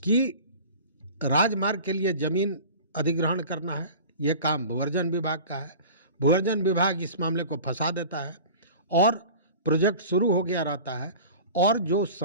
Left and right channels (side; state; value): both; inverted; correlation -0.38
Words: राजमार्ग के लिए ज़मीन अधिग्रहण करना है, ये काम भूअर्जन विभाग का है। भूअर्जन विभाग इस मामले को फंसा देता है और प्रोजेक्ट शुरू हो गया रहता है और जो